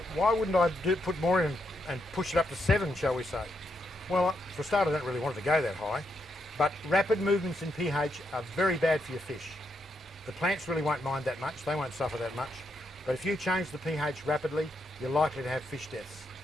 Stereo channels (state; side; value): normal; both; correlation 0.80